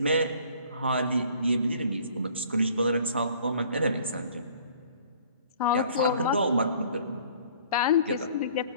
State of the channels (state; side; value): inverted; both; correlation -0.54